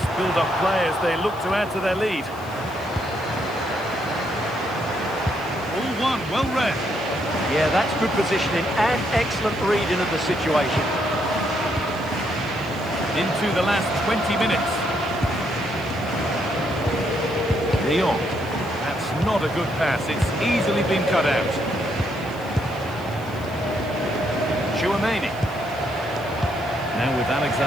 build-up play as they look to add to their lead. All one, well read. Yeah, that's good positioning and excellent reading of the situation. Into the last 20 minutes. De Jong. That's not a good pass. It's easily been cut out. Chouameni. Now with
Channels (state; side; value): noise; left; hiss, 23 dB below the sound